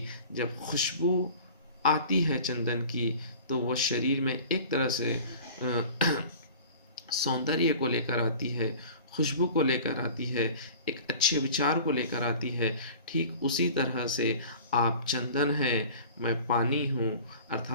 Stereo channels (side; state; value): both; inverted; correlation -0.42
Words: जब खुशबू आती है चंदन की तो वो शरीर में एक तरह से सौंदर्य को लेकर आती है, खुशबू को लेकर आती है, एक अच्छे विचार को लेकर आती है। ठीक उसी तरह से आप चंदन हैं, मैं पानी हूँ,